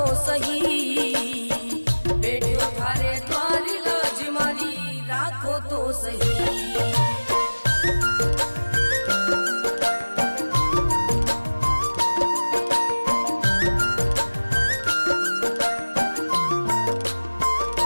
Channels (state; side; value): inverted; both; correlation -1.00